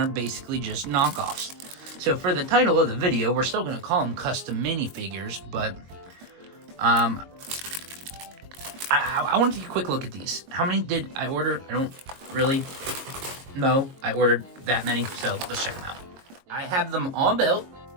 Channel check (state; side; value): late; left; 22 ms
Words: basically just knockoffs. So for the title of the video, we're still going to call them custom minifigures, but I want to take a quick look at these. How many did I order? I don't really know. I ordered that many, so let's check them out. I have them all built.